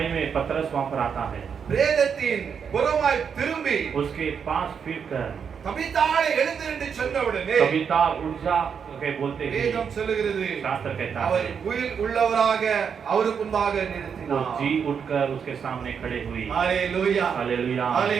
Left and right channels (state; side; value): quieter; left; 6.9 dB